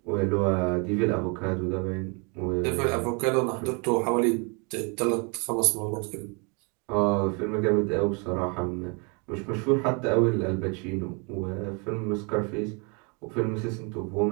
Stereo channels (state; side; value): quieter; left; 33.8 dB